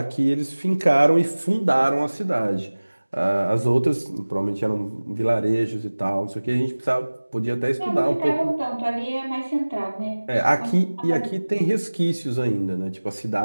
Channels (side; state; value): both; inverted; correlation -1.00